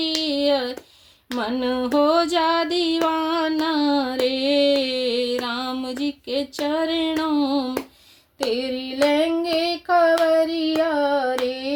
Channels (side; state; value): both; identical; correlation 1.00